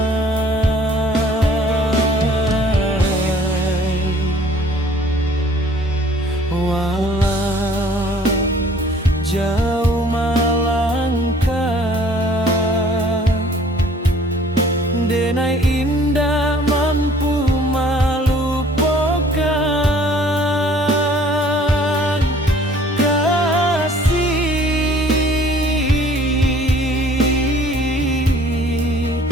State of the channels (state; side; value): normal; both; correlation 0.55